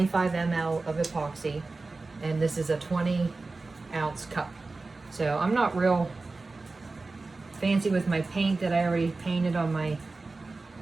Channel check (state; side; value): quieter; left; 3.6 dB